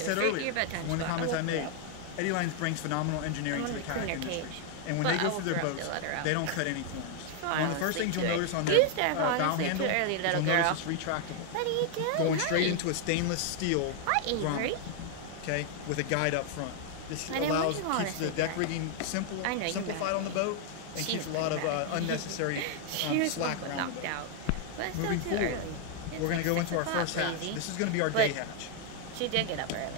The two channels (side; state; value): both; different; correlation 0.00